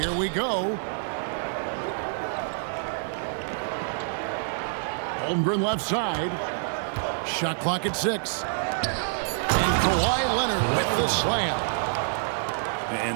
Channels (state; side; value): silent; left; digital silence